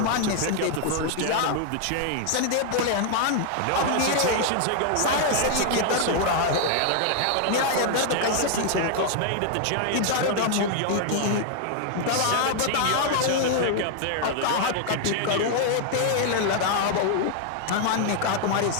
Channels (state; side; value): different; both; correlation 0.00